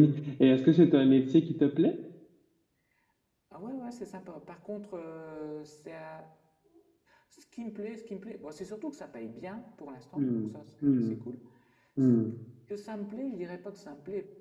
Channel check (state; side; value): identical; both; correlation 1.00